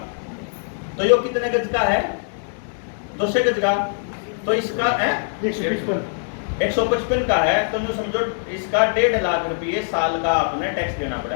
तो ये कितने गज का है, 200 गज का, तो इसका है 155 का है, तो जो समझो इसका 1.5 लाख रुपये साल का आपने टैक्स देना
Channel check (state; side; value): silent; right; digital silence